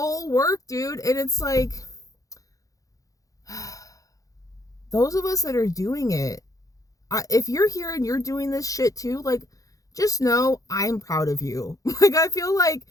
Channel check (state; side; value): late; right; 0.17 ms